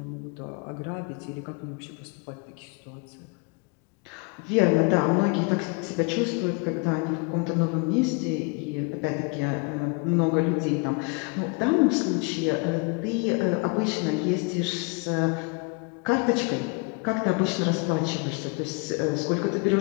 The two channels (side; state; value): right; quieter; 31.3 dB